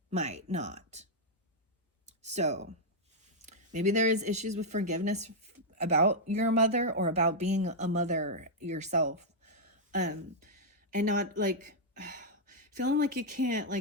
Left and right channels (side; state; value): both; normal; correlation -0.06